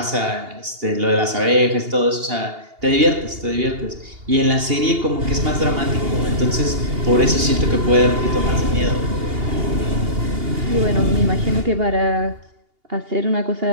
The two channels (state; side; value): late; left; 2.8 ms